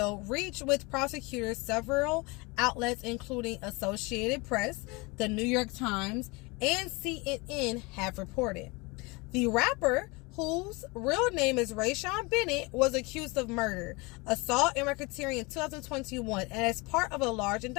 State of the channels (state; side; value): quieter; right; 26.5 dB